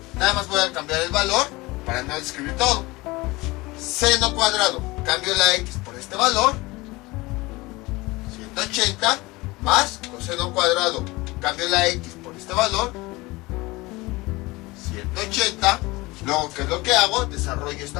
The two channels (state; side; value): quieter; right; 22.0 dB